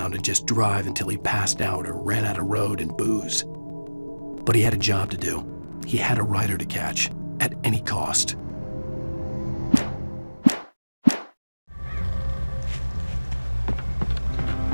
and just drive until he passed out or ran out of road and booze. But he had a job to do. He had a rider to catch, at any cost.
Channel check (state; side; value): inverted; both; correlation -1.00